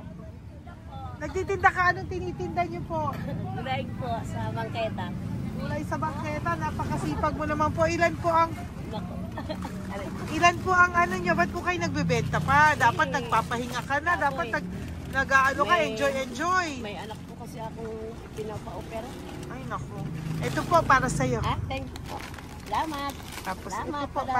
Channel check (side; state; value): both; identical; correlation 1.00